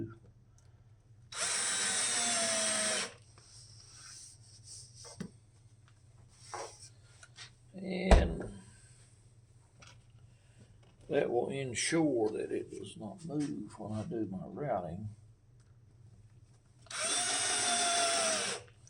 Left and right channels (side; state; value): both; identical; correlation 1.00